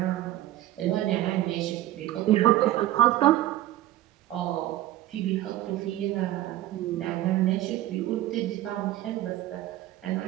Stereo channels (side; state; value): left; quieter; 14.5 dB